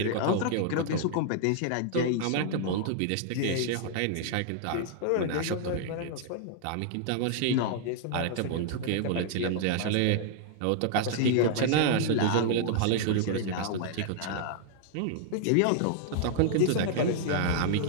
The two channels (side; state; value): both; different; correlation -0.01